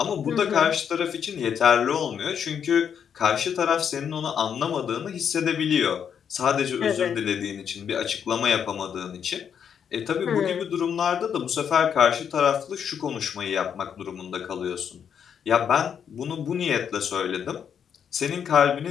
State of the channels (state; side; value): quieter; right; 7.9 dB